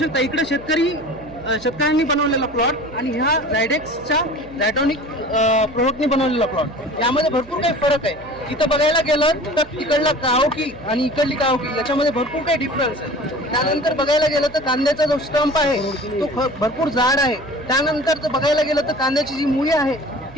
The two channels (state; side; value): noise; right; hum, 20 dB below the sound